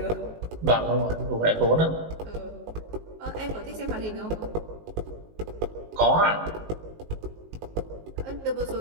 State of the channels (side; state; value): left; late; 19 ms